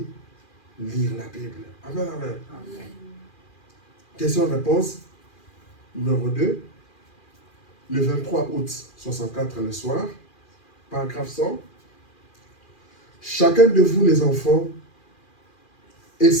lire la Bible. Amen, amen. Amen. Question-réponse numéro 2. Le 23 août 64 le soir, paragraphe 100. Chacun de vous les enfants,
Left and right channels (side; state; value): right; late; 2.4 ms